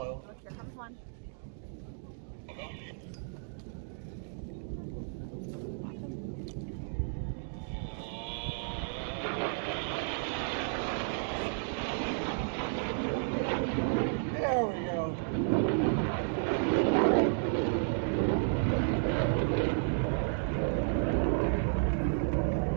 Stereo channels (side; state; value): left; silent; digital silence